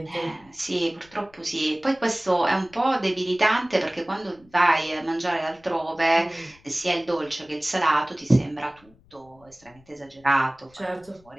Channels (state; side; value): noise; left; rumble, 29 dB below the sound